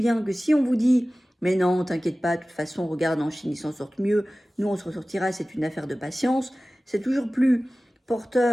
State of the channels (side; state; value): both; normal; correlation 0.97